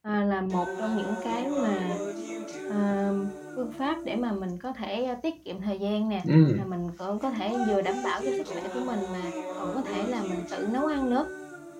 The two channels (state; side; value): identical; both; correlation 1.00